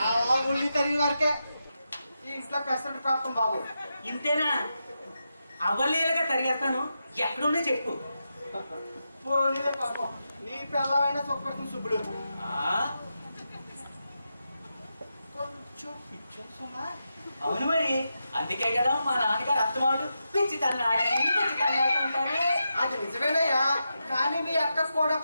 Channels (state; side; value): inverted; both; correlation -0.87